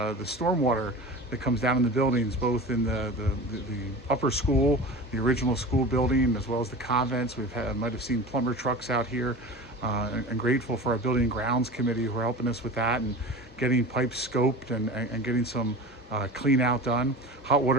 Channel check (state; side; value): normal; both; correlation 0.34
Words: stormwater that comes down in the buildings, both in the upper school, the original school building, as well as the convents. Might have seen plumber trucks out here, and grateful for our building and grounds committee who are helping us with that and getting pipes scoped and getting some clean out done. Hot